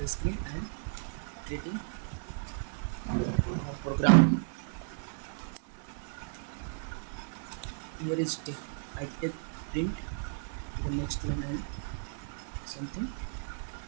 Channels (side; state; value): left; silent; digital silence